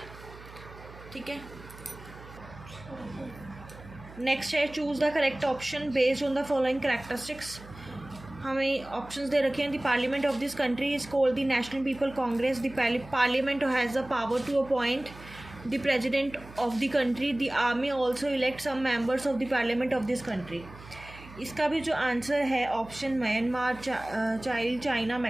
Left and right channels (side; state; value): right; noise; hum, 18 dB below the sound